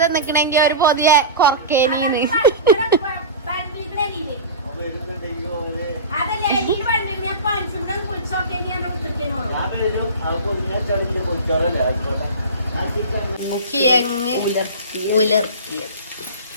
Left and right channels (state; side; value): inverted; both; correlation -0.30